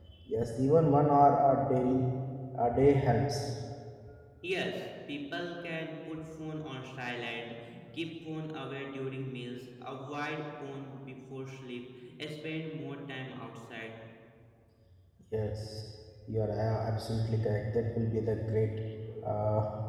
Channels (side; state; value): both; identical; correlation 1.00